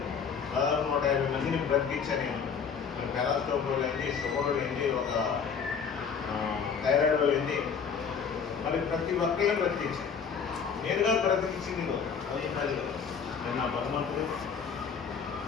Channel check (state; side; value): quieter; right; 6.4 dB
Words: దాదాపు 150 మందిని బ్రతికించాను నేను. మరి పెరాస్టోక్ ఏంటి, షుగర్ ఏంటి, ఒక థైరాయిడ్ ఏంటి, మరి ప్రతి ఒక్కరిని బ్రతికించాను. నేనుగా బ్రతికించింది అది మరి నేను నా భగవంతుడు